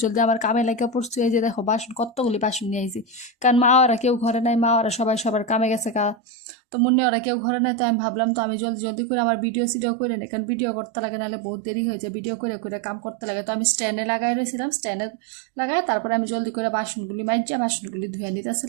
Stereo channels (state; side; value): drops out; left; at 6.2 s